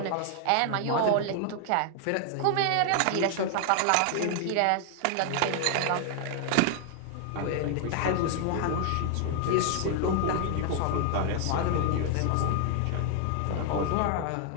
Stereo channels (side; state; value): both; different; correlation 0.00